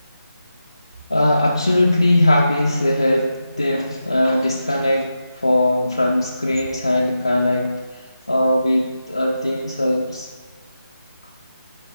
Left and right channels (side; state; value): both; inverted; correlation -0.89